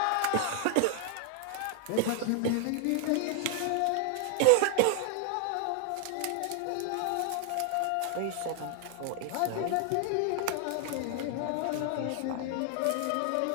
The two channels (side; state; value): both; different; correlation 0.00